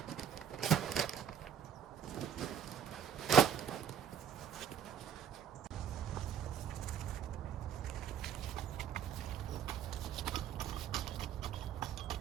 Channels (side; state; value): left; quieter; 8.4 dB